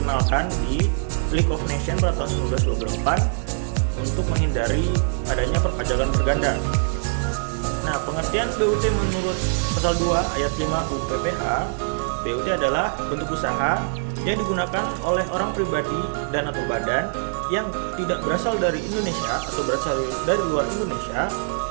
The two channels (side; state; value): left; silent; digital silence